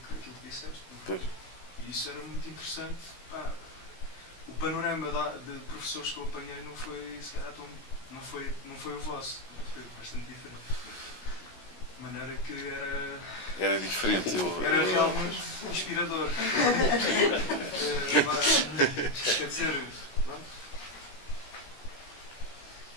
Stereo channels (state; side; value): late; right; 17 ms